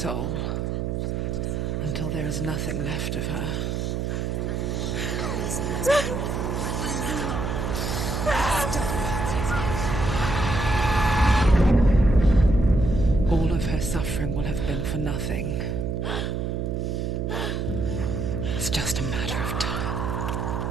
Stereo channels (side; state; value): right; noise; hum, 1 dB below the sound